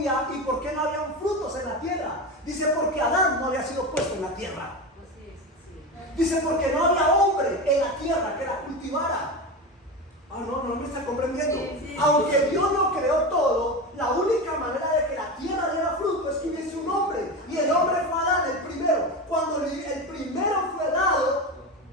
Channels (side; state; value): both; normal; correlation 0.22